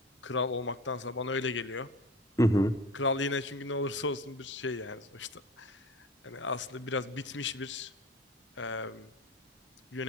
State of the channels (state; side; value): normal; both; correlation 0.36